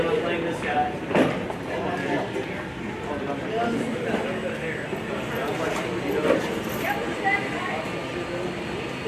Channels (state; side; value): identical; both; correlation 1.00